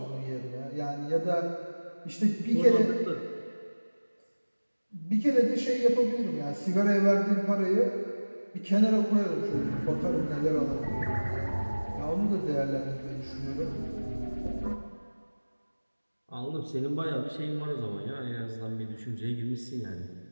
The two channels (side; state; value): both; inverted; correlation -1.00